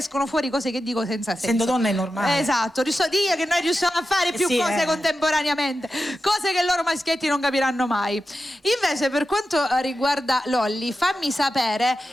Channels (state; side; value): normal; both; correlation 0.92